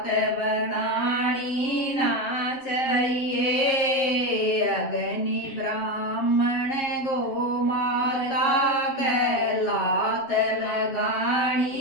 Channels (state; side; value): late; right; 7.6 ms